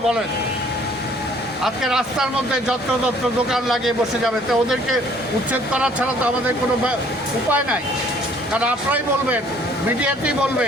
বলেন? আজকে রাস্তার মধ্যে যত্র দোকান লাগিয়ে বসে যাবে, তো ওদেরকে উচ্ছেদ করা ছাড়া তো আমাদের কোনো উপায় নাই। কারণ আপনারাই বলবেন, মিডিয়াতেই বলবে,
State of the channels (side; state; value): both; normal; correlation 0.58